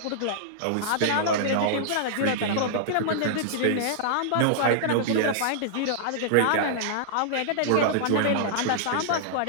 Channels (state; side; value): different; both; correlation -0.02